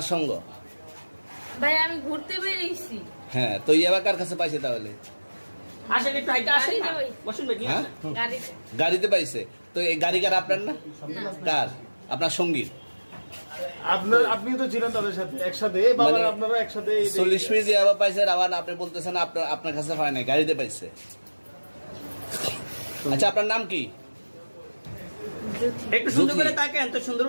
সঙ্গ? ভাই আমি ঘুরতে বেরিয়েছি। হ্যাঁ, তো ইয়াবা কার কাছে পাইছে তাহলে? আসেন একটু হাইটা আসেন না। গাড়িতে বসুন ভাই, নিয়ে হ্যাঁ? আসেন। গাড়িতে গাড়িতে পাইছে। তো এই গাড়ি কার, আপনার না? না। কার? আপনার সঙ্গী? আপনি তো ছিলেন তাদের সাথে একসাথে, বাবা মানে আপনারা একসাথে 40 পিস ইয়াবা পাইছে, আবার আপনি বলতেছেন আপনার কাছে হয় নাই, গাড়িতে পাইছে। আচ্ছা, আপনার নাম কি? একটু সুন্দর জুথি। করে তাকান তো, সুন্দর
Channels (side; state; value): both; inverted; correlation -1.00